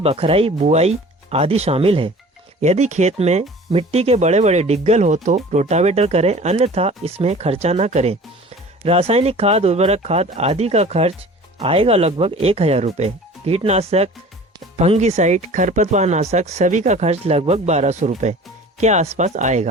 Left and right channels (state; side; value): normal; both; correlation 0.44